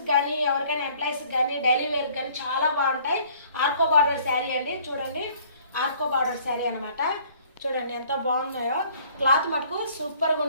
కానీ ఎవరికైనా ఎంప్లాయీస్కి కానీ డైలీ వేర్కి కానీ చాలా బాగుంటాయి. ఆర్కో బార్డర్ శారీ అండి. చూడండి, ఆర్కో బార్డర్ శారీ అనమాట. చూడండి ఎంత బాగున్నాయో. క్లాత్ మటుకు సూపర్గా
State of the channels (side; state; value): both; inverted; correlation -0.57